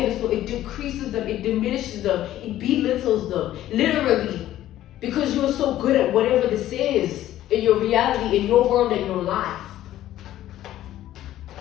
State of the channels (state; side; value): quieter; right; 13.4 dB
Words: It decreases them, it diminishes them, it belittles them, literally, because you are so good at whatever this is in your reality, in your world, in your life.